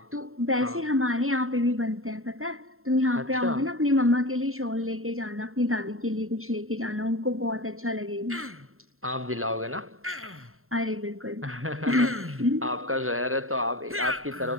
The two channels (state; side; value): late; left; 0.62 ms